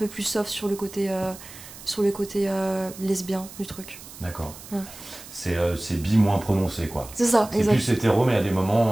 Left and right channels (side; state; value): right; noise; hiss, 16 dB below the sound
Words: plus soft sur le côté lesbien du truc. D'accord. Ouais. C'est bi moins prononcé, quoi. C'est ça, C'est exact. plus hétéro, mais à des